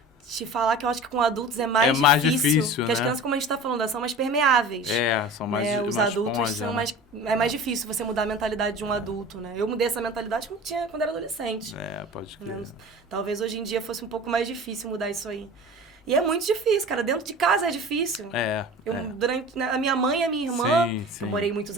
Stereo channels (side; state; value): both; normal; correlation 0.38